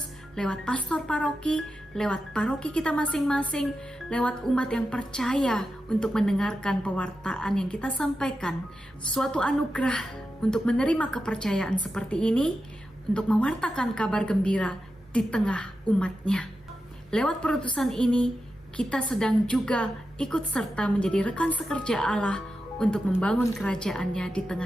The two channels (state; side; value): normal; both; correlation 0.90